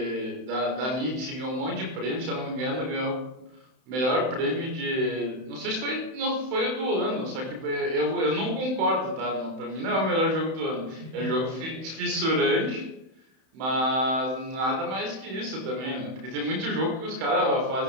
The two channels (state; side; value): late; left; 31 ms